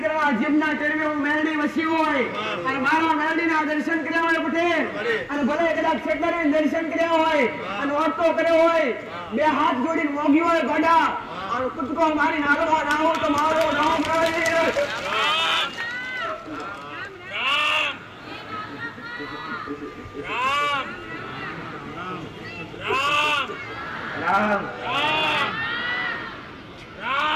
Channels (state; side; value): identical; both; correlation 1.00